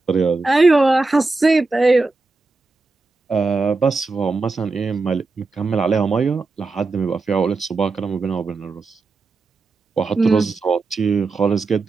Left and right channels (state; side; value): quieter; left; 3.7 dB